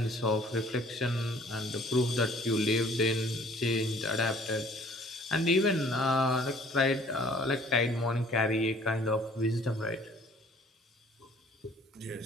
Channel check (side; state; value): both; normal; correlation 0.55